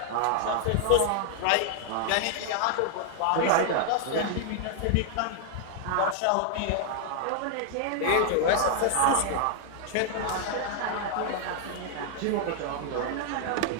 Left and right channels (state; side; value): different; both; correlation 0.00